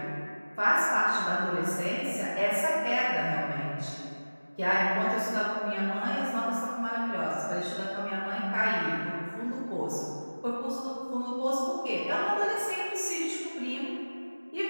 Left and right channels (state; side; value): inverted; both; correlation -1.00